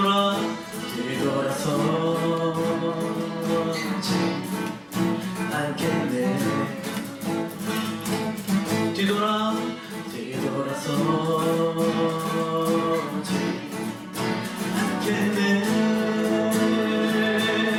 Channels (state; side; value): identical; both; correlation 1.00